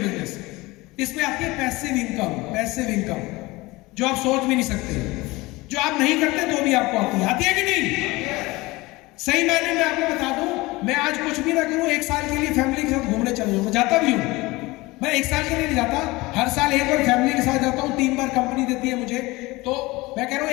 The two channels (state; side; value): quieter; right; 21.6 dB